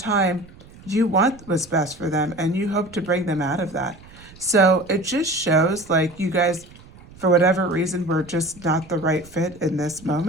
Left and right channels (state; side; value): noise; right; rumble, 22 dB below the sound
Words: you want what's best for them, and you hope to bring them out of that. So it just shows like you guys, for whatever reason, were just not the right fit in this